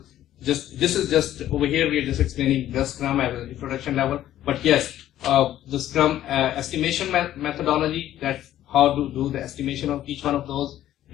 This is just over here. We are just explaining the Scrum at an introduction level. But yes, the Scrum estimation methodology. That's how to do the estimation of each one of those,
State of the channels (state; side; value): quieter; right; 12.7 dB